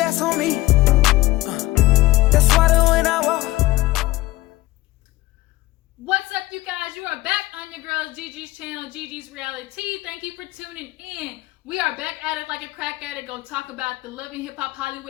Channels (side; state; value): right; quieter; 18.5 dB